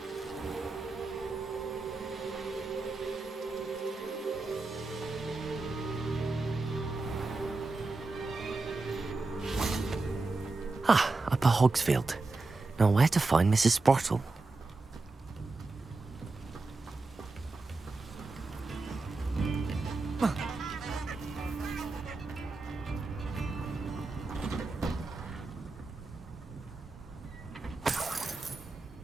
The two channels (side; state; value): left; quieter; 3.5 dB